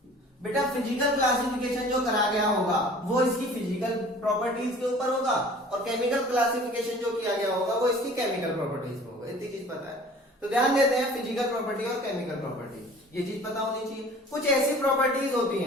बेटा फिजिकल क्लासिफिकेशन जो करा गया होगा वो इसकी फिजिकल प्रॉपर्टीज के ऊपर होगा, और केमिकल क्लासिफिकेशन जो किया गया होगा वो इसकी केमिकल प्रॉपर्टीज पे होगा। इतनी चीज पता है तो ध्यान देते हैं, फिजिकल प्रॉपर्टी और केमिकल प्रॉपर्टी, ये चीज पता होनी चाहिए। कुछ ऐसी प्रॉपर्टीज होती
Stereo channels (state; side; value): normal; both; correlation 0.47